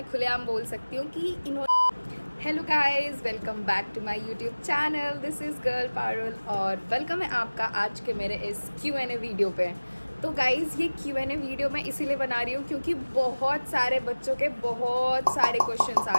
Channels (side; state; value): both; inverted; correlation -1.00